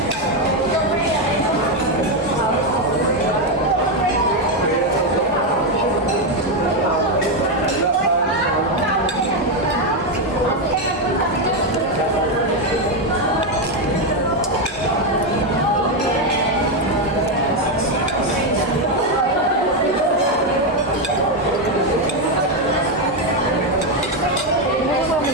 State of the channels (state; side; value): normal; both; correlation 0.06